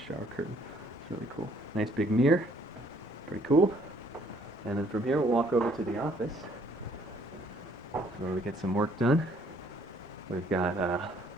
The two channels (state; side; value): normal; both; correlation 0.63